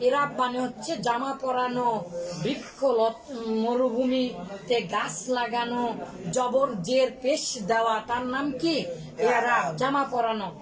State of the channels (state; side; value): identical; both; correlation 1.00